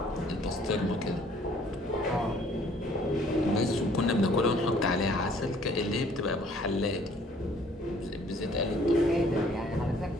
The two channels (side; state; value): both; normal; correlation 0.58